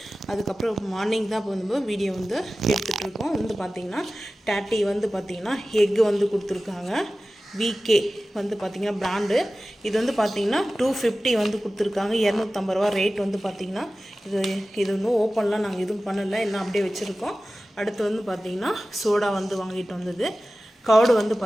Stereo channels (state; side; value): normal; both; correlation 0.96